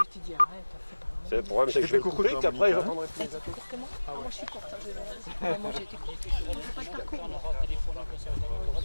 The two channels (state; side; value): inverted; both; correlation -1.00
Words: te dis arrête, fais pas. C'est le problème, c'est que je vais le couper, qu'après j'entendrai plus les appels. Court que moi? Moi je suis courte, moi j'ai été courte. Je ne fais pas de parcours.